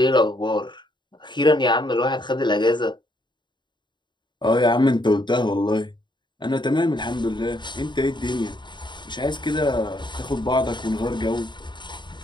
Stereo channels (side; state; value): right; late; 0.22 ms